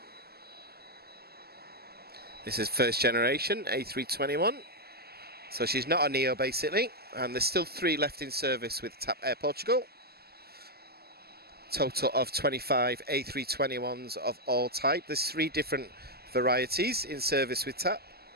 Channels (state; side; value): late; left; 0.46 ms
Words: This is first generation A321. So she's not a Neo basically, and there's still 3 left in service with TAP Air Portugal. Total of 25 A321s of all type. There's 3 different varieties in service with TAP.